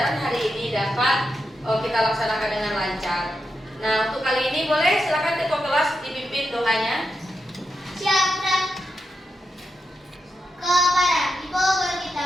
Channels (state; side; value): normal; both; correlation 0.86